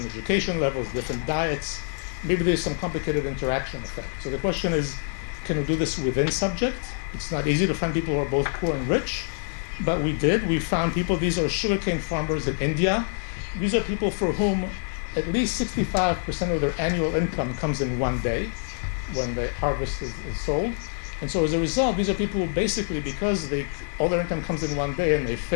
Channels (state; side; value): silent; right; 59 dB below the other